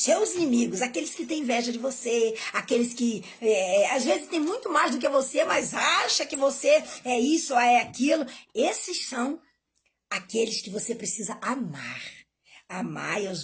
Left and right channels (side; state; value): both; identical; correlation 1.00